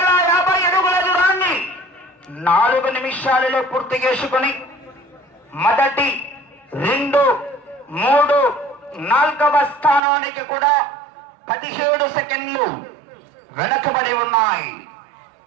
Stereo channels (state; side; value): drops out; left; at 10.0 s